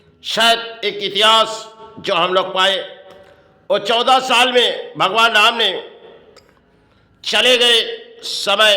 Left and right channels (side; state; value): both; identical; correlation 1.00